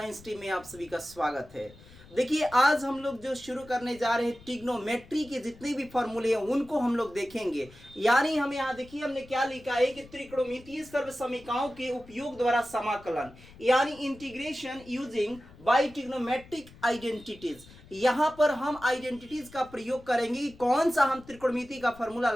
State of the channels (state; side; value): noise; left; rumble, 22 dB below the sound